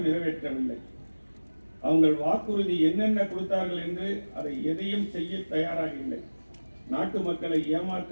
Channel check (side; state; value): both; inverted; correlation -1.00